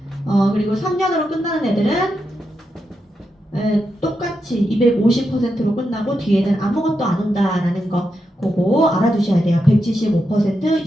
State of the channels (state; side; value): normal; both; correlation 0.86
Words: 그리고 3년으로 끝나는 애들은 똑같이 250%로 끝나고 뒤에는 아무것도 안 온다라는 거 그거 알아두셔야 돼요. 175%,